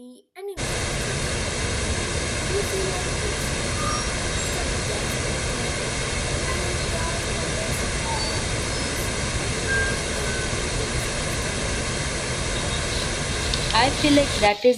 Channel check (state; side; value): identical; both; correlation 1.00